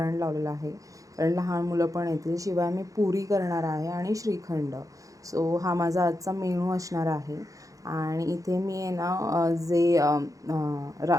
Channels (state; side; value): late; left; 0.16 ms